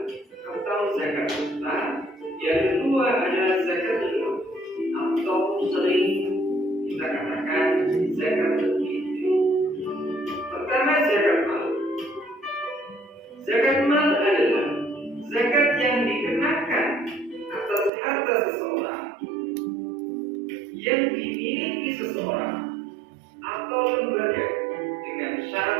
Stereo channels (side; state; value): left; drops out; at 17.9 s